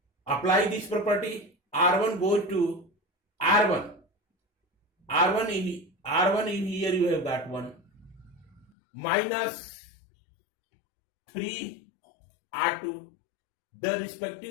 Apply this property. R1 goes to R1 in here you have got 1 minus 3 R2. The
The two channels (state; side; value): drops out; right; at 8.7 s